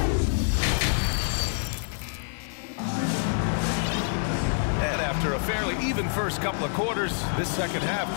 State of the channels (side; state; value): right; silent; digital silence